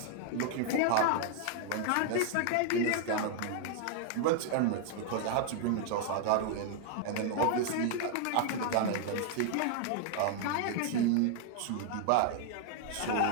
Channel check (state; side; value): different; both; correlation 0.00